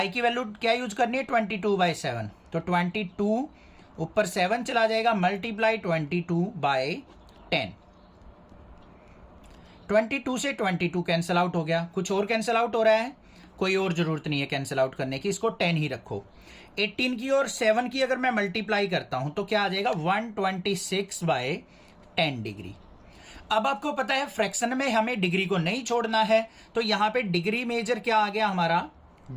की वैल्यू क्या यूज करनी है? 22/7। तो 22 ऊपर 7 चला जाएगा, मल्टीप्लाई 22/10। 22 से 22 कैंसिल आउट हो गया। कुछ और कैंसिल आउट हो रहा है? कोई और जरूरत नहीं है कैंसिल आउट करने की, इसको 10 ही रखो। 18 की और 7 की अगर मैं मल्टीप्लाई करता हूं तो क्या आ जाएगा 126/10 डिग्री। अब आपको पता है फ्रैक्शन में हमें डिग्री को नहीं छोड़ना है, तो यहां पे डिग्री मेजर क्या आ गया हमारा,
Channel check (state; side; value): identical; both; correlation 1.00